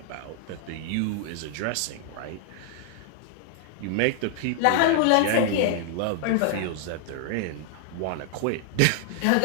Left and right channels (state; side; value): different; both; correlation 0.00